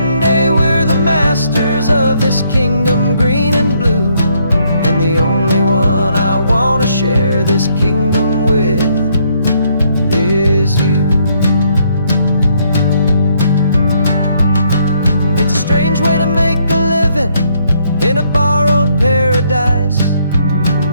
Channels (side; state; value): both; inverted; correlation -0.71